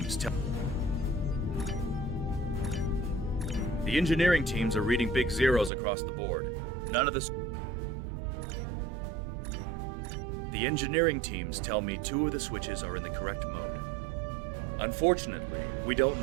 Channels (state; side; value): drops out; left; at 5.7 s